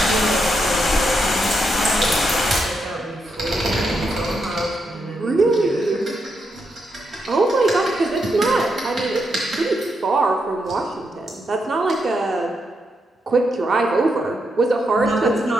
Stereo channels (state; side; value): normal; both; correlation 0.82